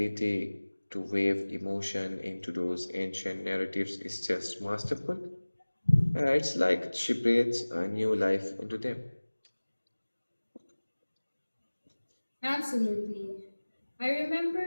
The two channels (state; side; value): inverted; both; correlation -1.00